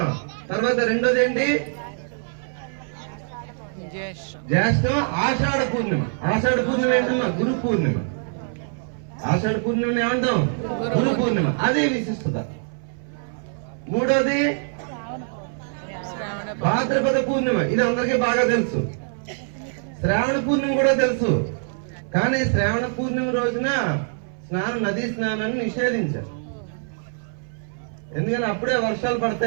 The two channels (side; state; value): left; silent; 59 dB below the other